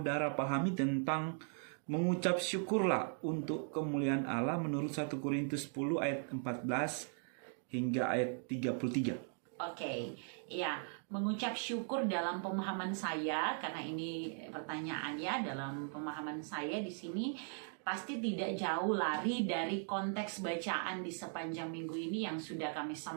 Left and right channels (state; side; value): silent; left; 52 dB below the other